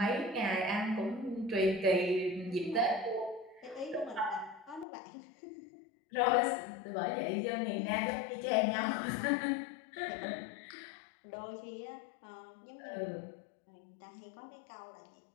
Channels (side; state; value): right; drops out; at 4.9 s